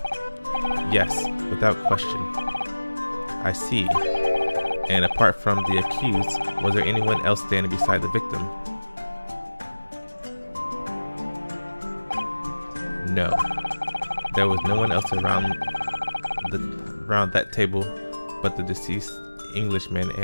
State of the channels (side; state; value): both; inverted; correlation -1.00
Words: Yes, without question. I see. And apart from the accused, was there anyone else standing beside the victim? No. There was no one else around that table but the deceased Englishman